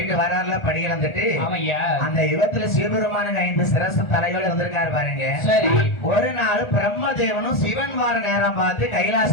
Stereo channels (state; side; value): late; right; 1.4 ms